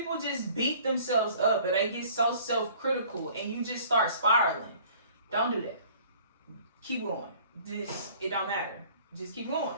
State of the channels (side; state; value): both; inverted; correlation -0.52